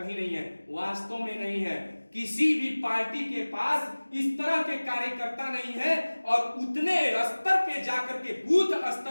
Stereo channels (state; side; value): inverted; both; correlation -1.00